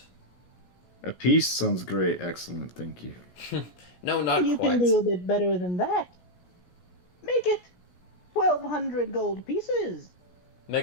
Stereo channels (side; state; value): right; late; 17 ms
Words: A piece sounds great. Excellent, thank you. No, not You quite. can do a bit better than that. Make it 1,200 gold pieces.